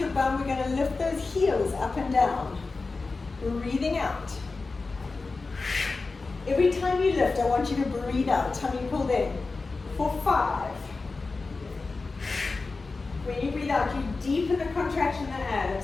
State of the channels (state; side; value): quieter; right; 3.9 dB